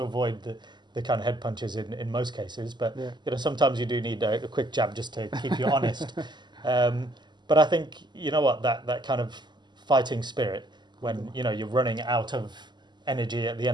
avoid the kind of head punches in most cases, but sometimes you do need a quick jab just to keep you honest. But I think that kind of fighting spirit when you're running out of energy at the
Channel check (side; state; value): left; late; 0.21 ms